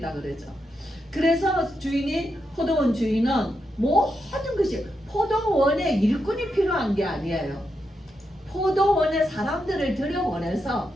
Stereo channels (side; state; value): both; normal; correlation 0.84